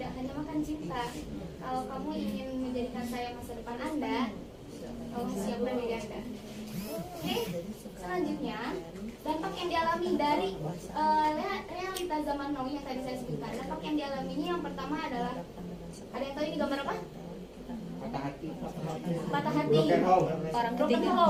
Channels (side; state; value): both; identical; correlation 1.00